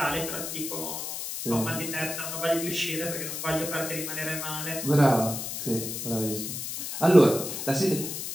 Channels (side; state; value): left; noise; hiss, 5 dB below the sound